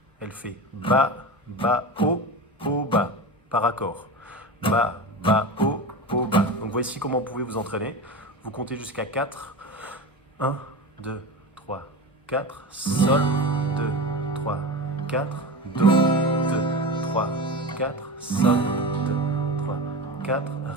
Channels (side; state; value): both; normal; correlation 0.26